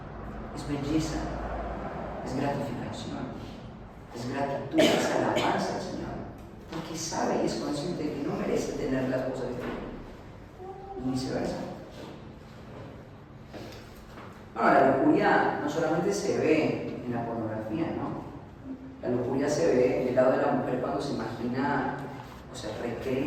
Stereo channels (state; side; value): identical; both; correlation 1.00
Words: es belleza, es gratificación, es gratitud, es alabanza al Señor. Porque sabe y es consciente de que no merece tener las cosas que tiene. Y viceversa. Bueno, la lujuria no solamente se ve en la pornografía, ¿no? La lujuria se ve del lado de la mujer cuando se imagina, o sea,